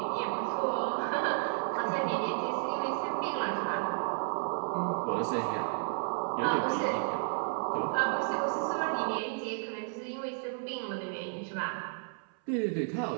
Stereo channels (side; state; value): left; silent; 56 dB below the other